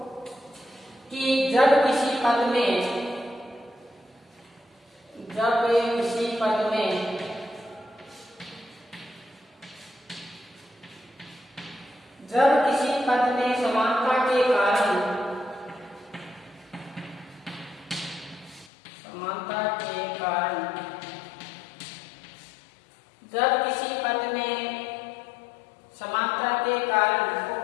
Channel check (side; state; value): right; drops out; at 18.7 s